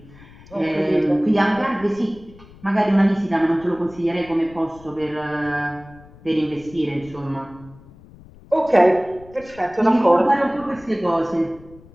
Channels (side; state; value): left; noise; rumble, 22 dB below the sound